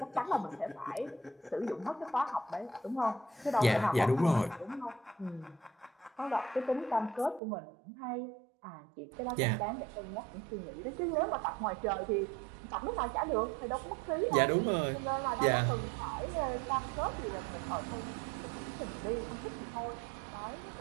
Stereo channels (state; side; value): drops out; left; at 7.4 s